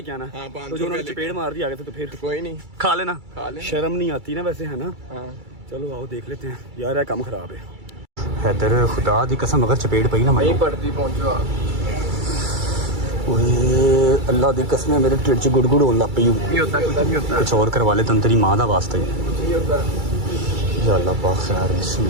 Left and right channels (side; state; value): left; late; 2.3 ms